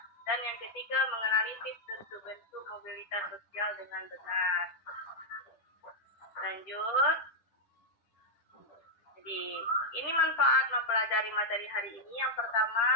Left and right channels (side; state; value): right; late; 10 ms